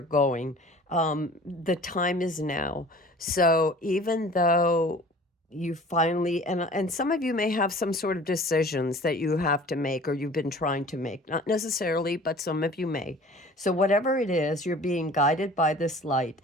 going. The time is now. So even though you finally, and some of you may have some sort of decisions that you have to make or you've been trying to make, not necessarily, but some of you may. So whatever it is, you're being guided by this light.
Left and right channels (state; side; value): normal; both; correlation 0.46